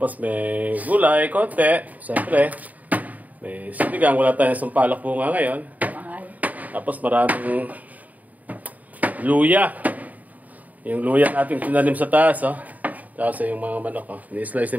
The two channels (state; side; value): late; left; 0.076 ms